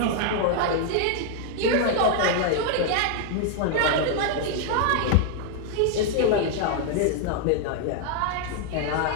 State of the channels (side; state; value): both; different; correlation 0.00